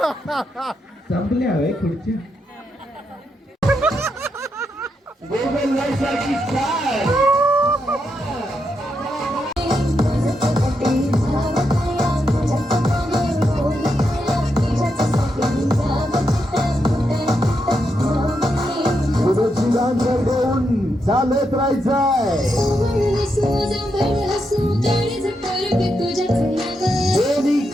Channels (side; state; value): both; normal; correlation 0.83